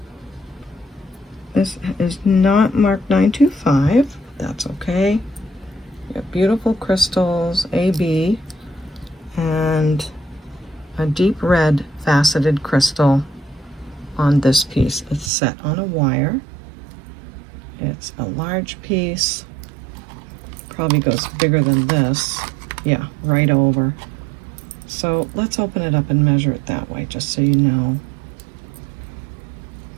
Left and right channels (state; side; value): drops out; left; at 15.3 s